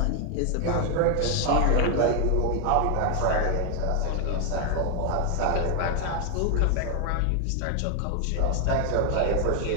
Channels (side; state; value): both; different; correlation 0.01